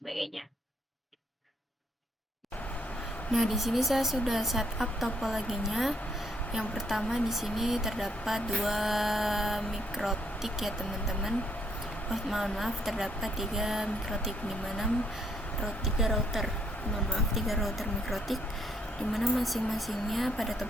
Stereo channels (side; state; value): both; normal; correlation 0.70